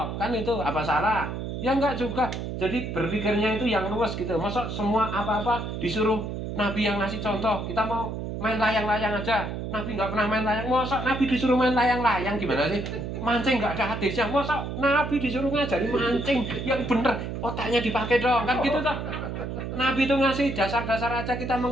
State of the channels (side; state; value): right; noise; hum, 5 dB below the sound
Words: kan itu apa salah? Ya enggak juga. Jadi berpikirnya itu yang luas gitu. Masa semua apa-apa disuruh Nabi yang ngasih contoh. Kita mau main layang-layang aja. Nabi nggak pernah main layang. Masa Nabi disuruh main layang-layang gimana sih? Mancing nggak ada hadisnya. Masa Nabi disuruh ngajari mancing yang bener, otaknya dipakai dong kan gitu toh. Nabi itu ngasih dasar-dasar aja, kita